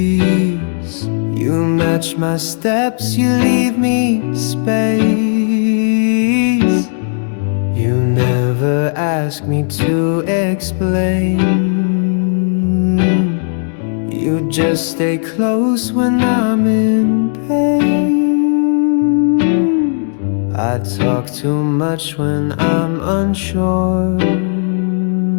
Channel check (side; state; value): right; silent; digital silence